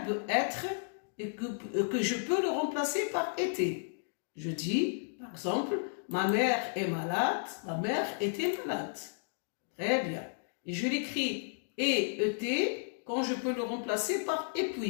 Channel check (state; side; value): silent; right; digital silence